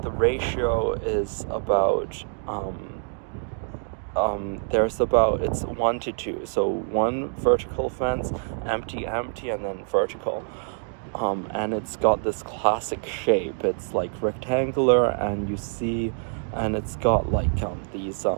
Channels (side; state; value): left; silent; 61 dB below the other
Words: the ratio is about it's 1 to 2, so 1 vertical fence, empty, and then vertical, and it's got this classic shape. It's like rectangular, and it's got like these